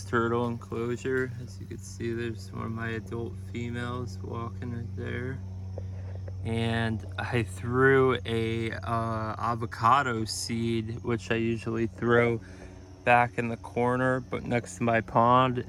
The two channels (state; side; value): identical; both; correlation 1.00